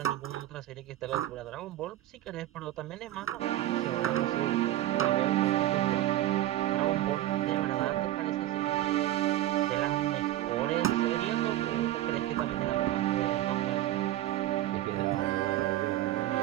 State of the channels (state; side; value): quieter; left; 14.2 dB